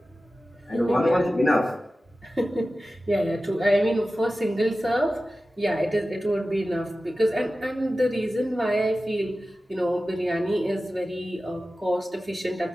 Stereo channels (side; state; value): both; normal; correlation 0.95